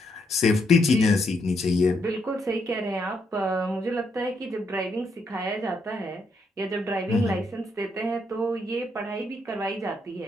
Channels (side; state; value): both; normal; correlation 0.77